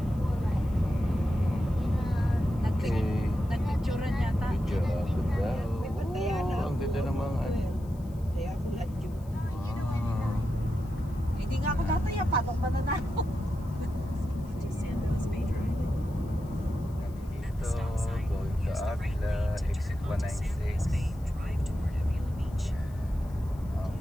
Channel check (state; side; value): noise; left; hiss, 27 dB below the sound